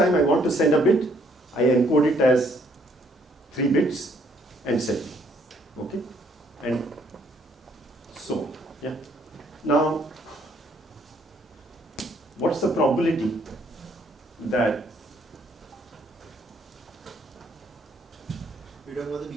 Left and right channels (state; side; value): normal; both; correlation 0.66